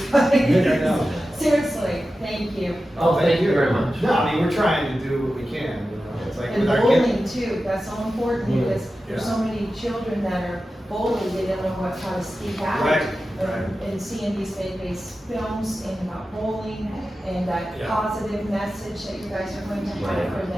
Yeah, I know. Seriously, thank you. Oh, thank you very much. No, I mean, we're trying to do what we can, you know, it's like And with our kids. bullying too, that's so important Mm, because there's yeah. so many children that are bullied, they don't know how to speak out. Right, And- right. And seeing these faith-based films and about bullying and that Yeah. positive message that you guys are going to have for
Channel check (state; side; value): normal; both; correlation 0.93